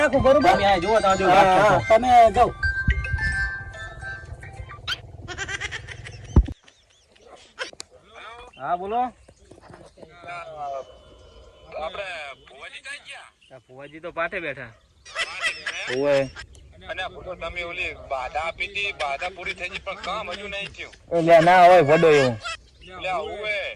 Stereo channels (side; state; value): both; identical; correlation 1.00